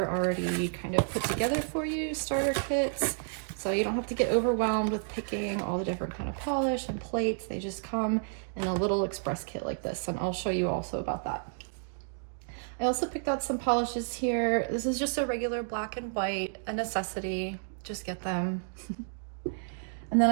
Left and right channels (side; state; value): left; silent; digital silence